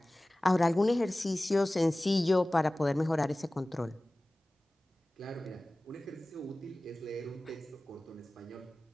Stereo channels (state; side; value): normal; both; correlation 0.98